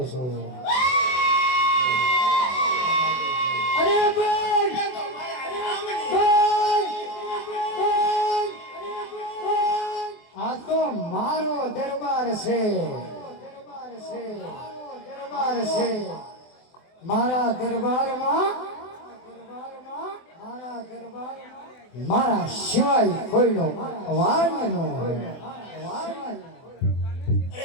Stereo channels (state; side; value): late; right; 24 ms